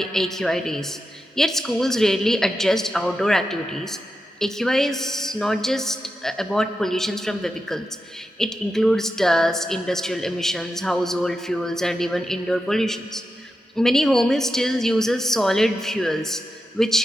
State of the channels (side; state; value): both; normal; correlation 0.89